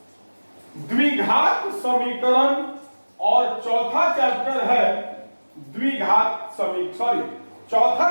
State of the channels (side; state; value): both; inverted; correlation -1.00